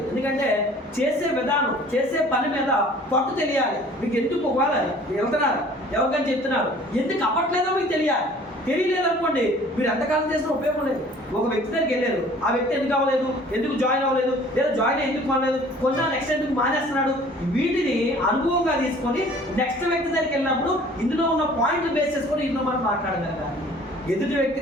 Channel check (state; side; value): normal; both; correlation 0.51